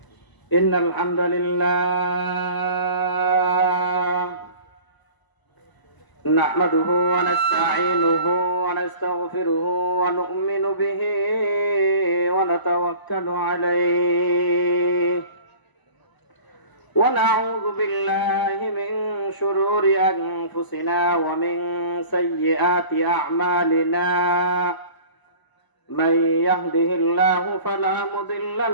إن الحمد لله نحمده ونستعينه ونستغفره ونؤمن به ونتوكل عليه ونعوذ بالله من شرور أنفسنا ومن سيئات أعمالنا. من يهده الله فلا مضل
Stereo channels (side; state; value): right; late; 1.0 ms